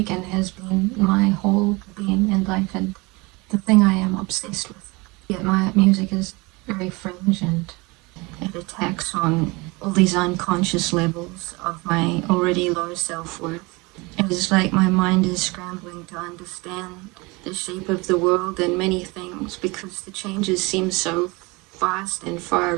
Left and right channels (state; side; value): quieter; left; 25.3 dB